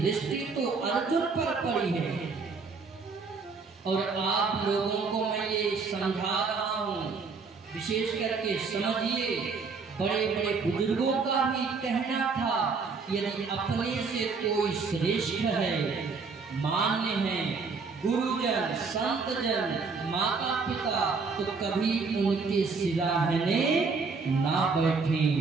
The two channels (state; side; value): quieter; left; 4.7 dB